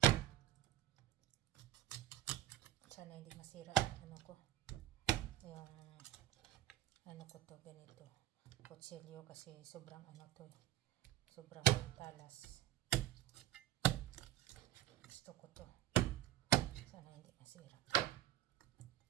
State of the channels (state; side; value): quieter; left; 13.1 dB